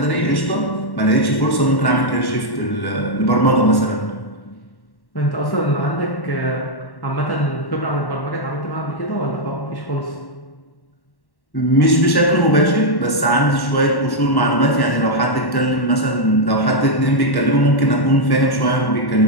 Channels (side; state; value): right; late; 1.1 ms